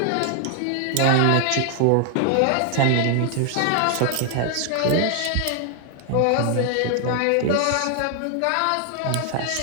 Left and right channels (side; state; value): both; different; correlation 0.00